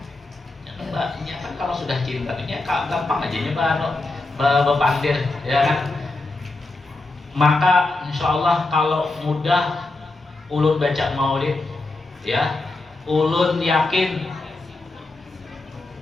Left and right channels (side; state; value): right; quieter; 3.1 dB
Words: Ya kan kalau sudah cinta ini gampang aja nyoba bepandir, ya kan. Maka insya Allah kalau mudah ulun baca maulid, ya. Ulun yakin